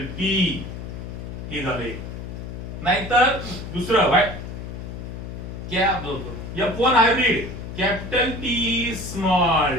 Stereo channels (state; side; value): noise; left; hum, 9 dB below the sound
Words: T हे झाले, नाहीतर दुसरं क्या F1 hybrid capital T